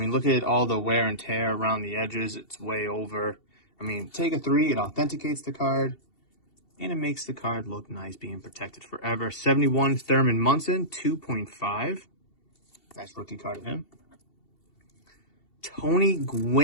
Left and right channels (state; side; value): late; right; 2.7 ms